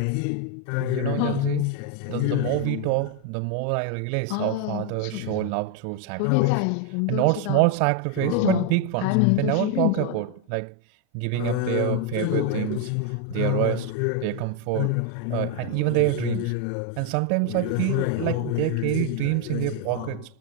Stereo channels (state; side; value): different; both; correlation 0.01